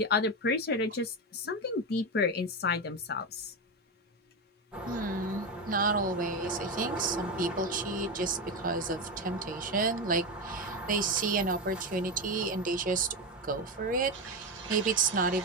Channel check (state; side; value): normal; both; correlation 0.15